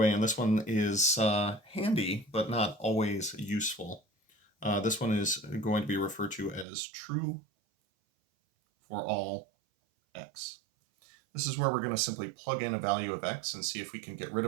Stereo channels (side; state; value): left; drops out; at 6.7 s